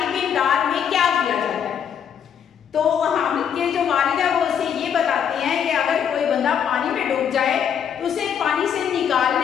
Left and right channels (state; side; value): quieter; right; 8.3 dB